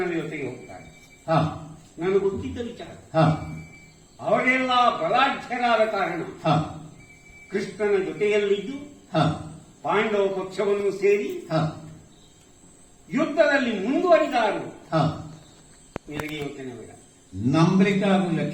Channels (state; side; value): identical; both; correlation 1.00